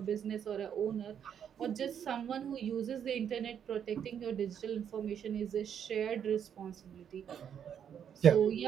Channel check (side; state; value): left; quieter; 8.5 dB